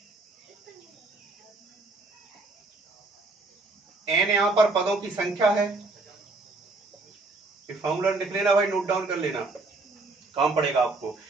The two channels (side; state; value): left; quieter; 3.3 dB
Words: एन यहां पर पदों की संख्या है। फॉर्मूला लिख लेना भाई, नोट डाउन कर लेना, काम पड़ेगा आपको।